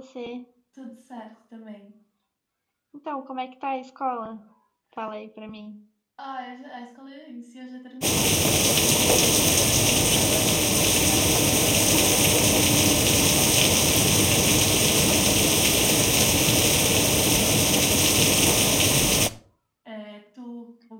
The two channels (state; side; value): identical; both; correlation 1.00